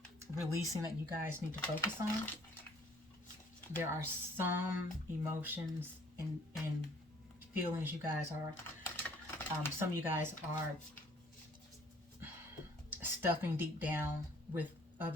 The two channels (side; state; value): both; normal; correlation 0.58